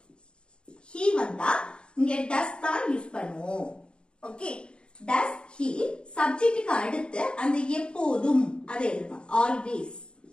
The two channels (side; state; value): right; late; 0.052 ms